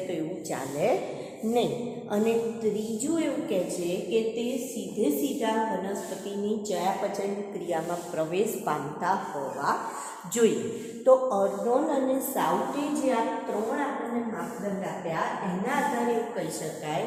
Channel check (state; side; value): identical; both; correlation 1.00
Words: તો એવું ચાલે નહીં. અને ત્રીજું એવું કહે છે કે તે સીધા વનસ્પતિની ચયાપચય ક્રિયામાં પ્રવેશ પામતા હોવા જોઈએ. તો અર્નોન અને સાઉથે જે આ 3 આપણને માપદંડ આપ્યા એના આધારે એવું કહી શકાય